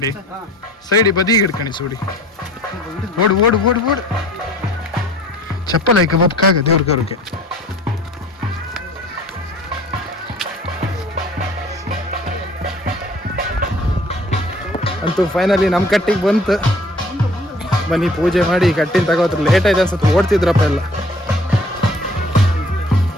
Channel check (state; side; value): normal; both; correlation 0.51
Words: ಸೈಡಿ ಬದಿಗೆ ಹಿಡ್ಕಣಿ ಸೂಡಿ. ಓಡು ಓಡು ಓಡು ಓಡು. ಚಪ್ಪಲ್ ಆಯ್ಕೆ ಬಪ್ಕಾಗ ದೇವ್ರ ಕರುಕೆ. ಅಂತೂ ಫೈನಲಿ ನಮ್ಮ ಕಟ್ಟಿಗೆ ಬಂತು. ಬನ್ನಿ ಪೂಜೆ ಮಾಡಿ ಕಟ್ಟಿನ ತಗೋತ್ರ. ಲೇಟ್ ಆಯ್ತು ಅನ್ಸುತ್ತೆ, ಓಡ್ತಿದ್ರಪ್ಪ ಎಲ್ಲ.